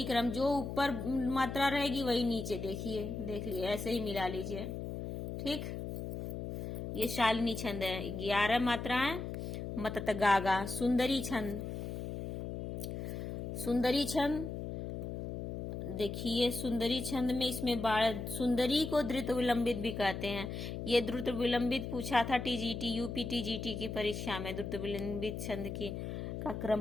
क्रम, जो ऊपर मात्रा रहेगी वही नीचे देखिए, देख लिए, ऐसे ही मिला लीजिए। ठीक, ये शालिनी छंद है। 11 मात्राएं, मतत गागा। सुंदरी छंद। सुंदरी छंद देखिए, सुंदरी छंद में इसमें सुंदरी को द्रुत विलंबित भी कहते हैं। ये द्रुत विलंबित पूछा था टीजीटी, यूपी टीजीटी की परीक्षा में। द्रुत विलंबित छंद की का क्रम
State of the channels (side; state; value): left; noise; hum, 5 dB below the sound